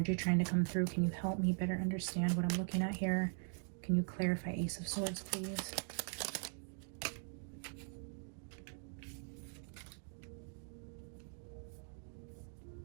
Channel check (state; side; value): silent; left; 50 dB below the other